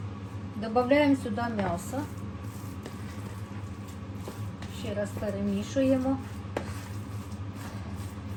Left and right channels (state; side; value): identical; both; correlation 1.00